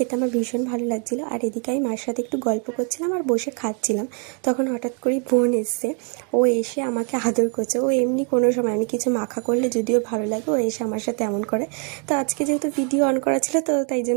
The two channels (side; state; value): left; quieter; 35.7 dB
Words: আমার ভীষণ ভালো লাগছিলো। আর এদিকে আমি মার সাথে একটু গল্প করছিলাম আর বসে খাচ্ছিলাম। তখন হঠাৎ করেই বোন এসছে। ও এসে আমাকে আদর করছে। ও এমনি কোনো সময় আমি কিছু মাখা করলে যদিও ভালো লাগে, ও এসে আমার সাথে এমন করে। তো আজকে যেহেতু ভিডিও অন করা ছিল, তো তাই